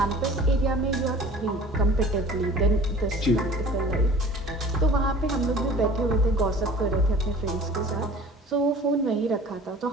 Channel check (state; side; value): normal; both; correlation 0.45